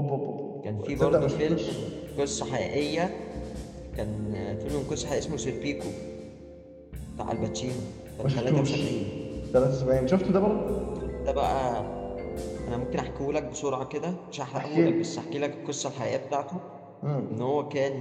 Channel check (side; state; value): both; identical; correlation 1.00